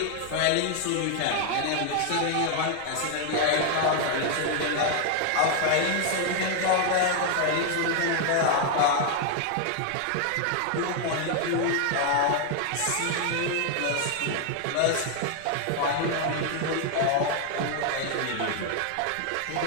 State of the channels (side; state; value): both; different; correlation 0.00